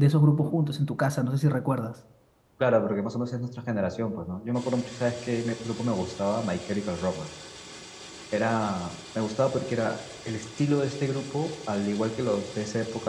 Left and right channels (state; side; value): identical; both; correlation 1.00